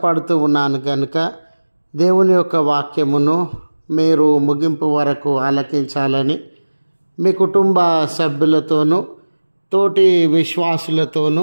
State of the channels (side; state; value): both; inverted; correlation -1.00